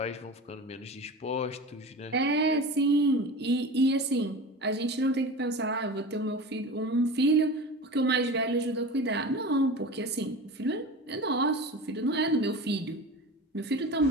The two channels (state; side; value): normal; both; correlation 0.32